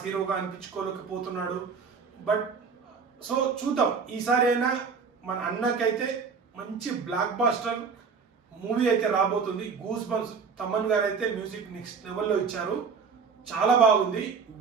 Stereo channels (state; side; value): quieter; left; 5.6 dB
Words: హీరోగా అనిపించుకోలేకపోతున్నాడు. బట్ సో చూద్దాం, ఈసారి అయినా మన అన్నకైతే మంచి బ్లాక్ బాస్టర్ మూవీ అయితే రాబోతుంది. గూస్ బంప్స్ తమన్ గారు అయితే మ్యూజిక్ నెక్స్ట్ లెవెల్లో ఇచ్చారు, చాలా బాగుంది.